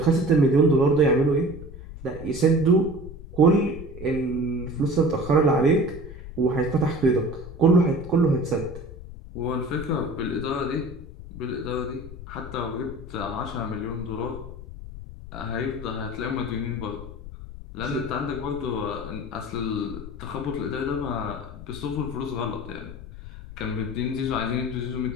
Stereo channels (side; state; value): left; noise; rumble, 13 dB below the sound